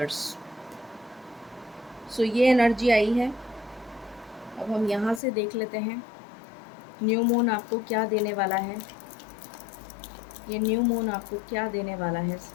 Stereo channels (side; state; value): right; drops out; at 5.2 s